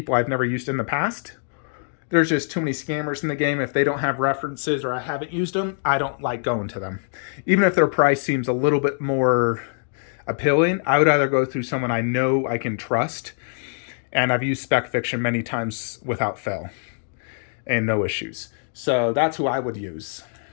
I've never used in the past. There's just too many scammers in the game. If they don't have references or I haven't used them, I don't like going to them. Even if their price seems a little bit more appealing, I would either go through someone I know I can trust, and I've used Spec Fiction many times without fail and no issues. So that's who I would use.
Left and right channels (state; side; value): silent; right; digital silence